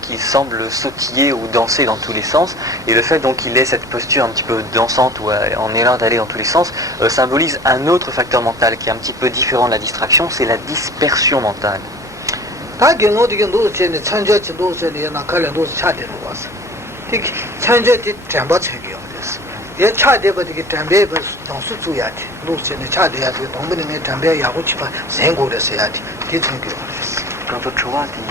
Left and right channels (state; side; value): normal; both; correlation 0.43